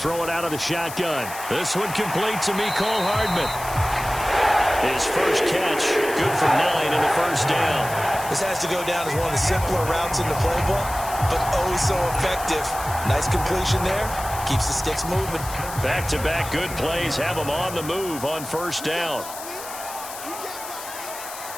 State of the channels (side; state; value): left; noise; hiss, 11 dB below the sound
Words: it out of the shotgun. This one complete to Mecole Hardman. His first catch, good for 9 and a first down. This has to go down as one of the simpler routes in the playbook, but oh so effective. Nice completion there. Keeps the sticks moving. Back-to-back good plays have them on the move on first down.